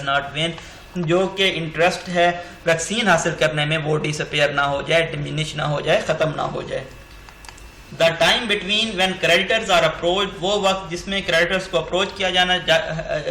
not when, جو کہ انٹرسٹ ہے ویکسین حاصل کرنے میں وہ ڈسپیئر نہ ہو جائے، ڈیمینش نہ ہو جائے، ختم نہ ہو جائے. The time between when creditors are approach, وہ وقت جس میں کریڈیٹرز کو اپروچ کیا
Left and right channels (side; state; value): both; identical; correlation 1.00